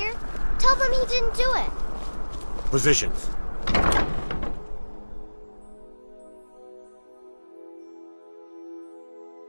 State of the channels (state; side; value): inverted; both; correlation -1.00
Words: Tell them he didn't do it. Positions.